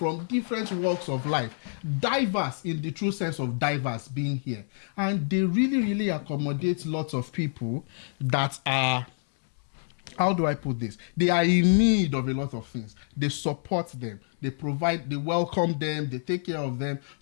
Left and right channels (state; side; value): silent; right; 60 dB below the other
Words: different walks of life, diverse in the true sense of diverse, being here. And they really, really accommodate lots of people that are, how do I put this? They are in need of a lot of things. They support them. They provide, they welcome them, they take care of them.